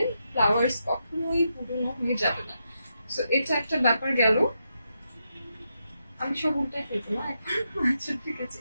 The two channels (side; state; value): both; inverted; correlation -0.83